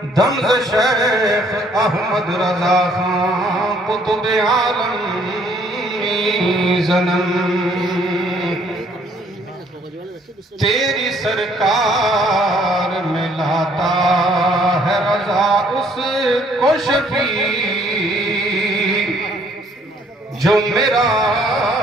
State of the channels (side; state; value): both; normal; correlation 0.63